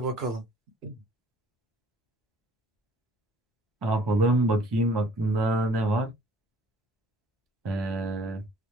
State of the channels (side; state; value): both; normal; correlation 0.56